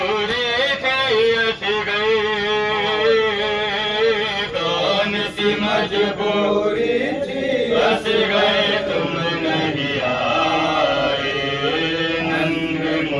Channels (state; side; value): identical; both; correlation 1.00